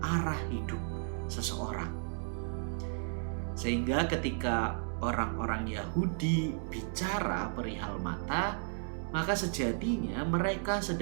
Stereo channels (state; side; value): silent; left; 55 dB below the other